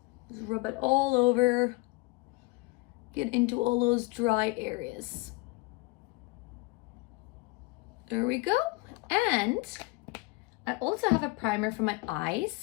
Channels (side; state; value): right; quieter; 23.5 dB